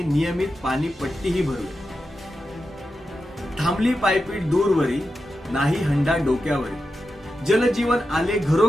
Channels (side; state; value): both; normal; correlation 0.90